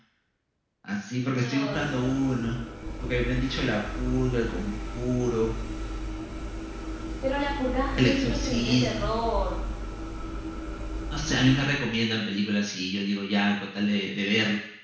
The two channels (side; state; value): both; identical; correlation 1.00